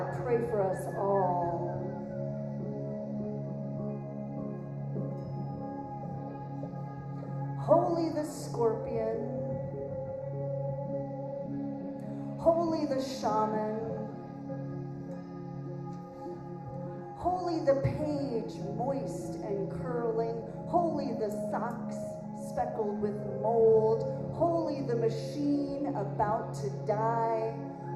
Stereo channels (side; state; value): both; identical; correlation 1.00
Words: pray for us all. Holy the scorpion, holy the shaman, holy the page moist and curling, holy the socks speckled with mold, holy the machine about to die,